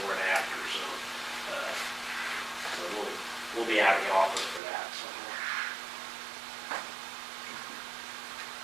and after, so we'll be out of the office for that. So.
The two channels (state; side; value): drops out; left; at 4.6 s